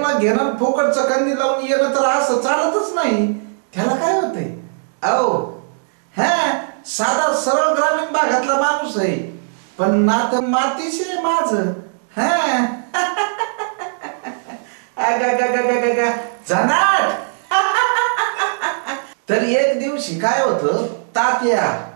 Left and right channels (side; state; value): left; silent; digital silence